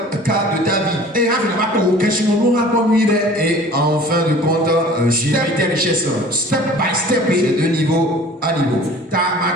cas de ta vie. Et en fin de compte, gérer tes richesses. Step by step. C'est de niveau à niveau.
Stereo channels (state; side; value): normal; both; correlation 0.46